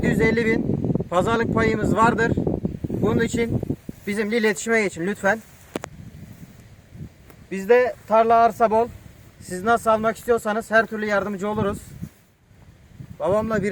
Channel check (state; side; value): identical; both; correlation 1.00